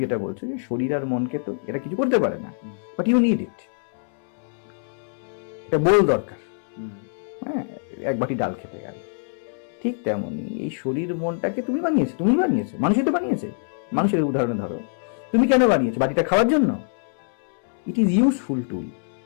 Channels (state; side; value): silent; right; 62 dB below the other